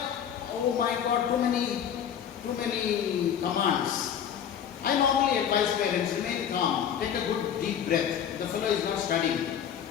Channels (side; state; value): right; quieter; 8.9 dB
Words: Oh my God, too many commands. I normally advise parents, remain calm, take a good deep breath. The fellow is not studying,